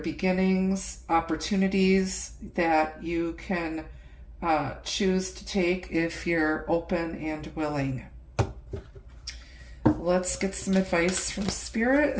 opportunities that you can choose to take if you're open and willing. Let's get some advice from Spirit.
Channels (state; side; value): identical; both; correlation 1.00